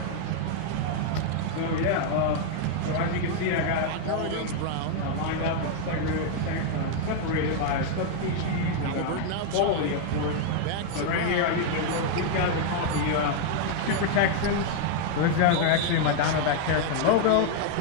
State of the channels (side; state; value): both; different; correlation 0.00